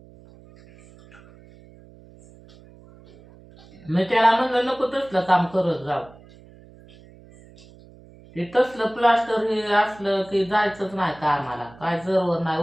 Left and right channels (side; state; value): right; noise; hum, 23 dB below the sound